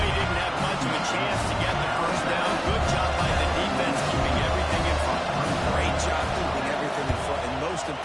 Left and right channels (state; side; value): identical; both; correlation 1.00